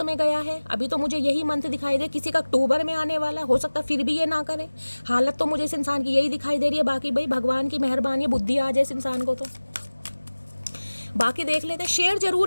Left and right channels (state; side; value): inverted; both; correlation -1.00